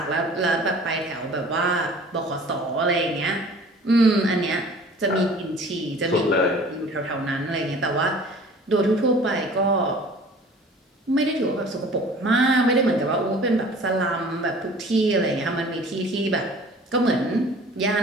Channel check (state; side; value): normal; both; correlation 0.47